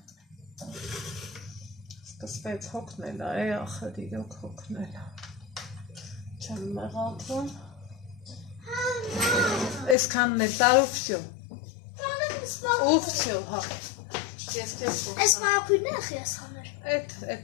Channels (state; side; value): drops out; right; at 10.0 s